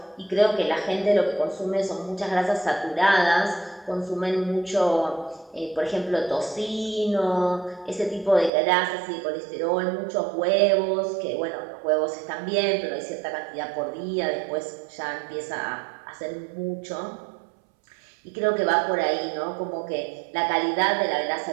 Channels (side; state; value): left; drops out; at 8.5 s